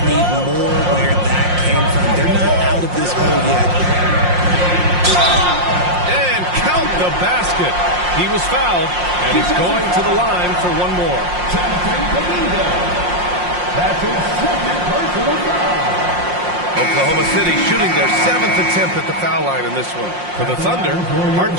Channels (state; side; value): late; left; 5.6 ms